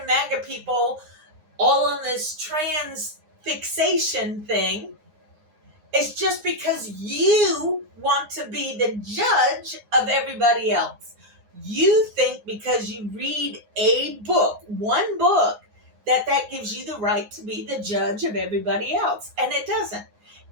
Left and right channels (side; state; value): left; late; 9.6 ms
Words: MAGA people all on this trans fixation thing, it's just because you want to be the judge of everybody else. You think because you read a book, one book, that gives you the right to be the judge of everybody else. And it doesn't.